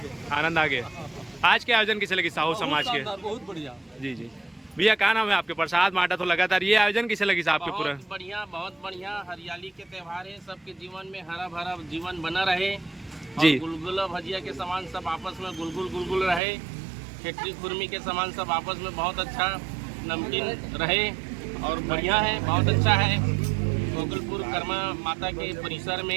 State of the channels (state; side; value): drops out; left; at 16.4 s